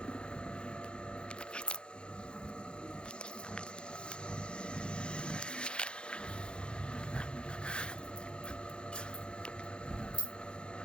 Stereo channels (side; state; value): right; late; 0.053 ms